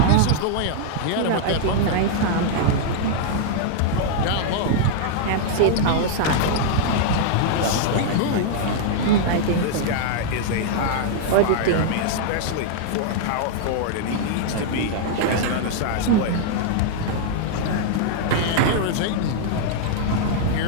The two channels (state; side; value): different; both; correlation -0.01